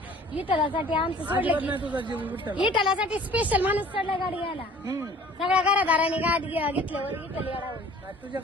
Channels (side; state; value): both; normal; correlation 0.50